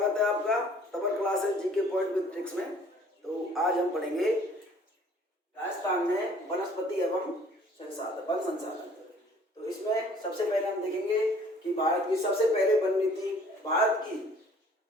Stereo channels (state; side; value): normal; both; correlation 0.55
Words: है आपका Tapan classes GK point with tricks में। तो आज हम पढ़ेंगे राजस्थान में वनस्पति एवं वन संसाधन। तो इसमें सबसे पहले हम देखेंगे कि भारत की सबसे पहले वन नीति भारत